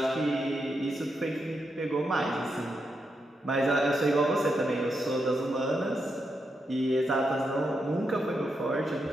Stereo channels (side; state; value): both; normal; correlation 0.84